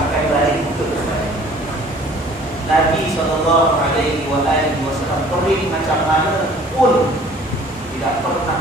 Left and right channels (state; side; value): normal; both; correlation 0.52